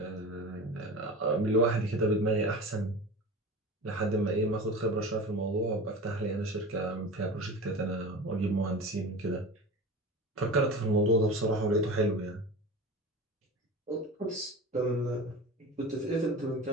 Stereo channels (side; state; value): both; normal; correlation 0.33